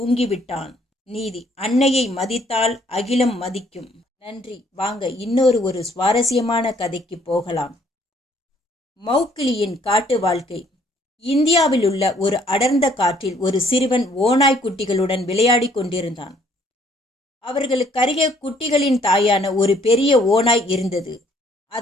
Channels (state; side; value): normal; both; correlation 0.64